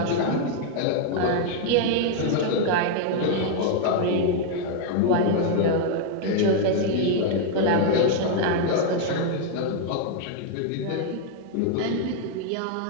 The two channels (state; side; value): different; both; correlation 0.00